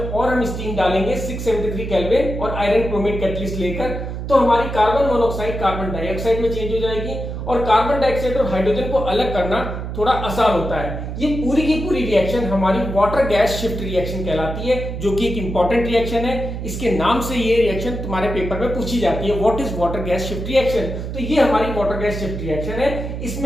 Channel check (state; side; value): noise; right; hum, 6 dB below the sound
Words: हम स्टीम डालेंगे 673 केल्विन और आयरन क्रोमेट कैटलिस्ट लेकर, तो हमारी कार्बन मोनोऑक्साइड कार्बन डाइऑक्साइड में चेंज हो जाएगी और कार्बन डाइऑक्साइड और हाइड्रोजन को अलग करना थोड़ा आसान होता है। ये पूरी की पूरी रिएक्शन हमारी वाटर गैस शिफ्ट रिएक्शन कहलाती है, जो कि एक इंपॉर्टेंट रिएक्शन है। इसके नाम से ये रिएक्शन तुम्हारे पेपर में पूछी जाती है, what is water gas shift reaction. तो ये हमारी वाटर गैस शिफ्ट रिएक्शन है।